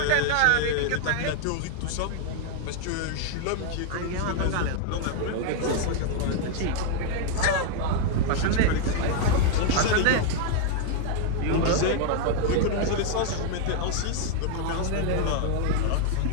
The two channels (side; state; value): both; different; correlation 0.00